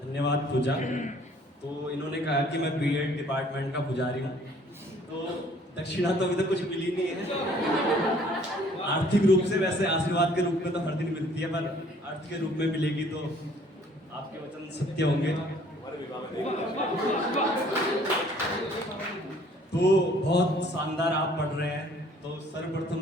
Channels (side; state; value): both; normal; correlation 0.57